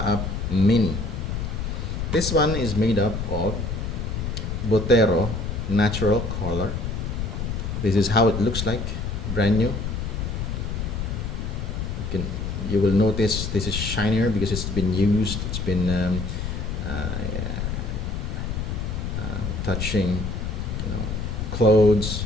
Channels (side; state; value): left; noise; rumble, 3 dB below the sound